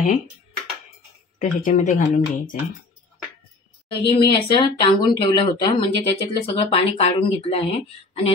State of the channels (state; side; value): quieter; right; 3.3 dB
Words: तर ह्याच्यामध्ये घालून घ्यायचं आहे। दही मी असं टांगून ठेवलं होतं, म्हणजे त्याच्यातलं सगळं पाणी काढून घेतलं आहे। आणि